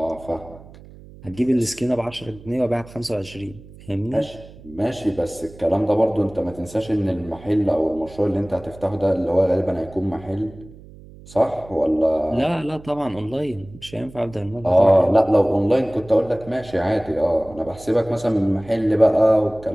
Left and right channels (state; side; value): noise; right; hum, 20 dB below the sound